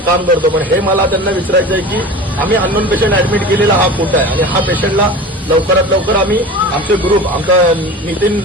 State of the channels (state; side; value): normal; both; correlation 0.35